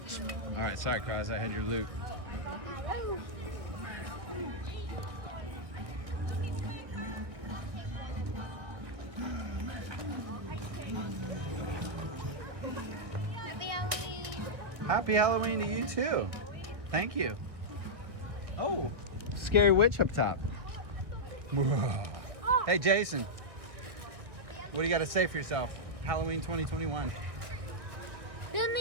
All right, sorry, Cross. I had your loot. Happy Halloween. Happy Halloween to you too. Thank you. Oh, scary witch up top. Hey, Jason. What do you got to say for yourself? Halloween 2021. Give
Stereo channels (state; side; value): late; left; 1.8 ms